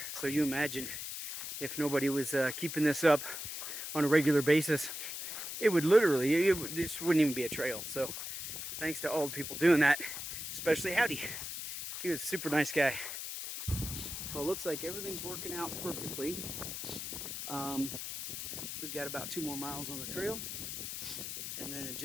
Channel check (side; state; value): left; noise; hiss, 6 dB below the sound